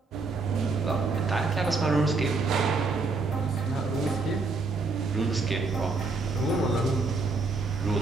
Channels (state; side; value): quieter; left; 4.0 dB